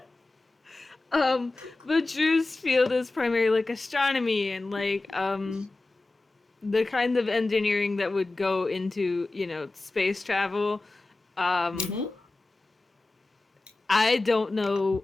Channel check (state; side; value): quieter; right; 3.2 dB